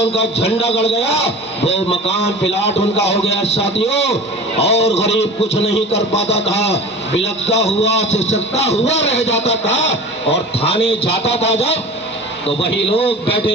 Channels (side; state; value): both; normal; correlation 0.37